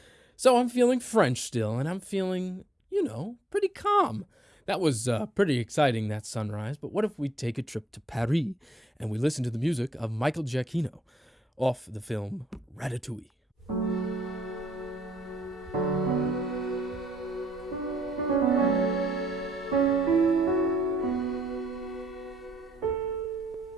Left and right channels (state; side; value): normal; both; correlation 0.73